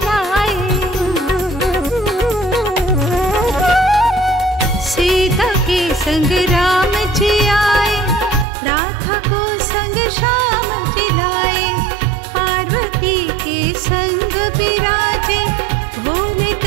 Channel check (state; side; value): drops out; left; at 8.5 s